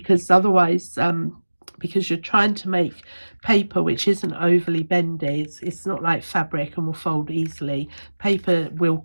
otherwise because you're trying to make paper which isn't overly bendy. It's not like fabric and will fold easily. Paper will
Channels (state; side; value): inverted; both; correlation -1.00